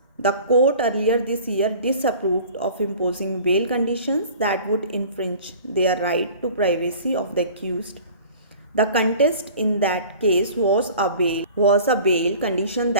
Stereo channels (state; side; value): inverted; both; correlation -0.45